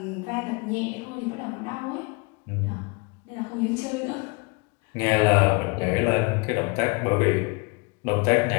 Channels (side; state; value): right; quieter; 30.0 dB